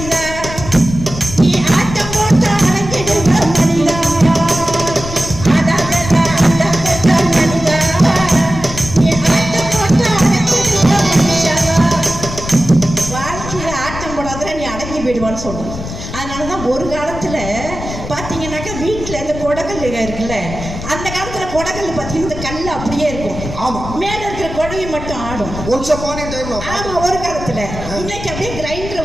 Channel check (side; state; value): left; noise; rumble, 9 dB below the sound